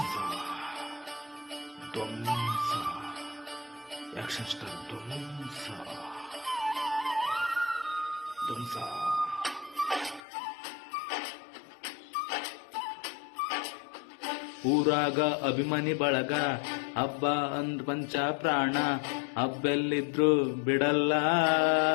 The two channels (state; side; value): drops out; right; at 10.2 s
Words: ಆಕ್ಷನ್ ಸ್ಟಾರ್ ಧ್ವಂಸ. ಊರಾಗ ಅಭಿಮಾನಿ ಬಳಗ, ಹಬ್ಬ ಅಂದ್ ಪಂಚ ಪ್ರಾಣ, ಹಬ್ಬೆಲ್ಲಿದ್ರು ಬಿಡಲ್ಲ,